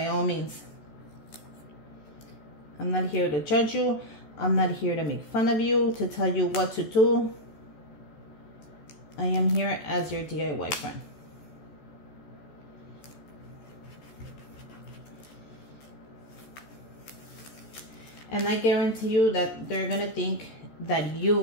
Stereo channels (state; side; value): late; right; 14 ms